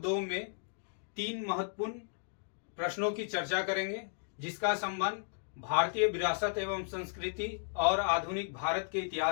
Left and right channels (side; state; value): right; silent; digital silence